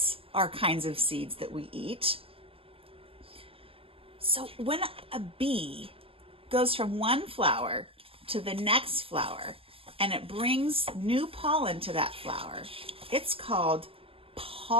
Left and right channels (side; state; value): left; late; 0.27 ms